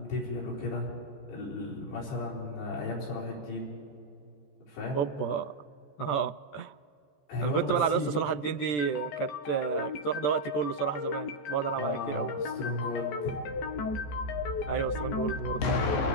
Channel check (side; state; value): right; late; 13 ms